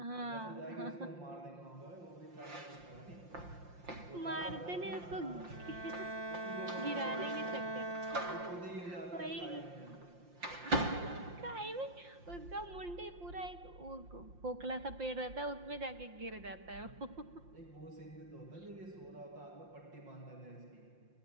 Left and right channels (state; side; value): late; left; 5.7 ms